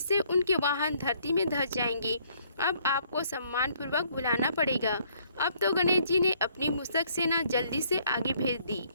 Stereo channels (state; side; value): inverted; both; correlation -0.65